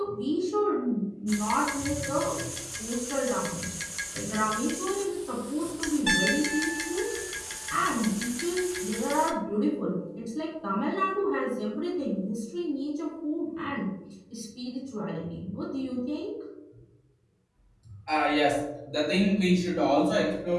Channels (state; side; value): identical; both; correlation 1.00